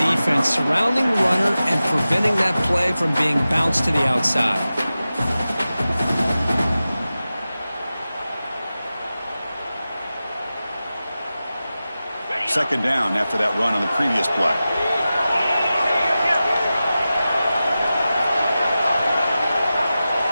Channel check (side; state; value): both; inverted; correlation -0.94